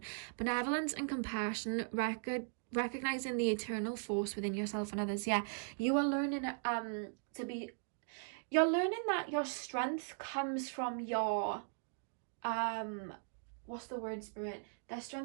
benevolence and compassion. Recognizing the eternal force within yourself and others. Yeah, you are learning you're learning that your strength comes from your what's the word, spirit? Their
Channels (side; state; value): left; silent; digital silence